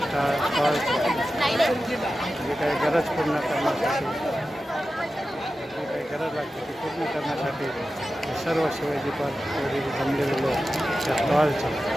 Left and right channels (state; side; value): normal; both; correlation 0.93